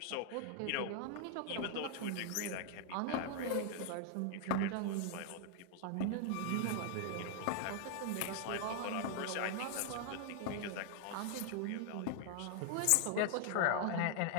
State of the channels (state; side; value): different; both; correlation 0.00